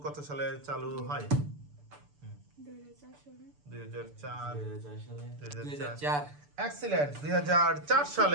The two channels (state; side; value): late; left; 6.8 ms